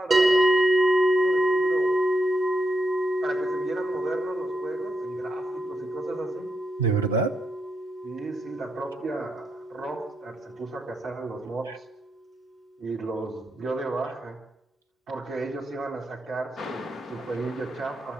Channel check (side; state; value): both; normal; correlation 0.83